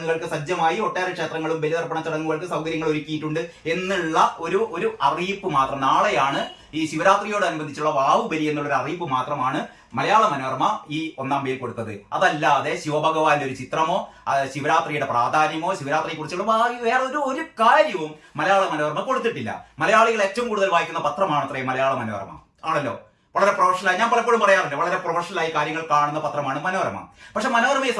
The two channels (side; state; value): both; identical; correlation 1.00